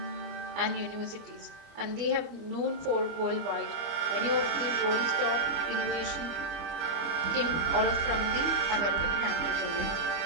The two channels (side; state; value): left; late; 25 ms